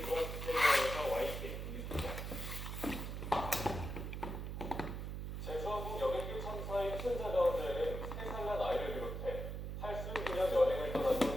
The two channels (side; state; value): right; noise; hum, 5 dB below the sound